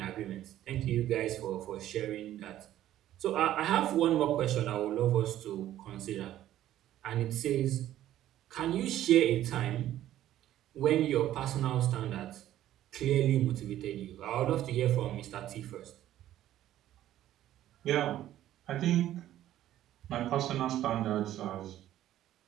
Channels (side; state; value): left; quieter; 12.9 dB